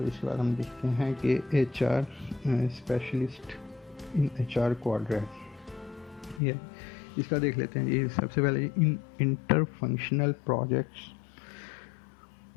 इसके बाद हम देखते हैं कि HR specialist in HR quadrant, ये इसका देख लेते हैं। ये सबसे पहले in inter functional projects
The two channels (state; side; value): drops out; right; at 6.4 s